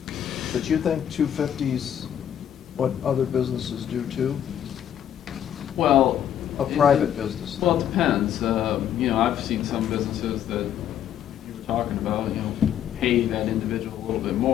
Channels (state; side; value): quieter; right; 10.1 dB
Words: but you think 250's what other businesses do too? Well. A private business. Well, it depends. You know, I've seen some businesses that you were talking about, you know, pay that individual a little bit